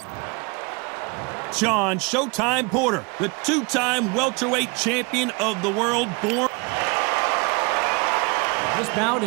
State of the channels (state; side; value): quieter; left; 29.0 dB